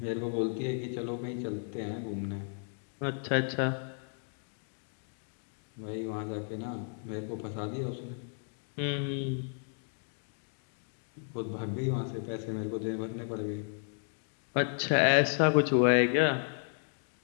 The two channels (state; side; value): silent; right; 55 dB below the other